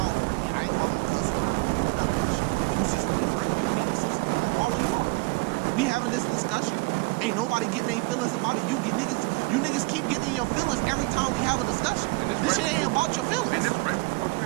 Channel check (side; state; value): left; quieter; 26.7 dB